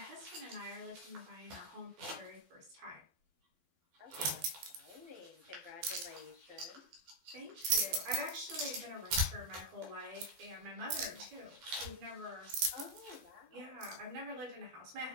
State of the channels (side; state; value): left; late; 12 ms